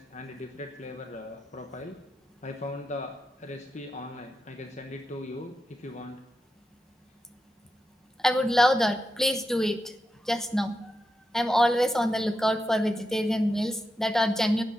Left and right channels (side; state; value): both; normal; correlation 0.88